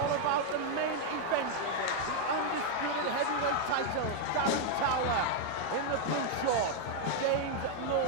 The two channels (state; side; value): different; both; correlation 0.00